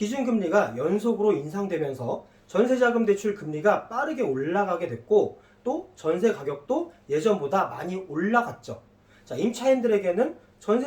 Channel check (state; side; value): identical; both; correlation 1.00